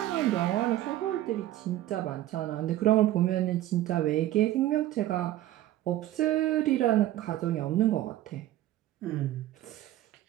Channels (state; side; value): quieter; left; 14.2 dB